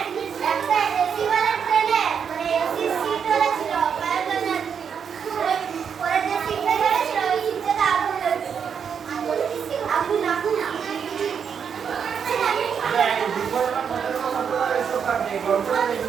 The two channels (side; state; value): left; quieter; 7.2 dB